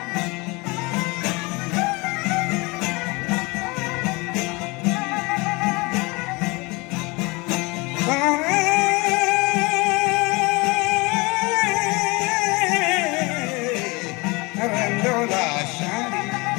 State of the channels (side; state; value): right; quieter; 25.8 dB